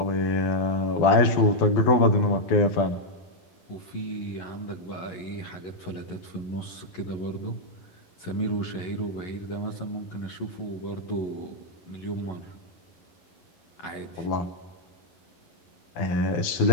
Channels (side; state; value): right; late; 11 ms